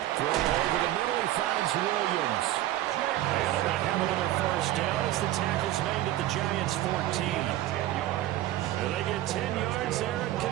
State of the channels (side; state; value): left; quieter; 14.5 dB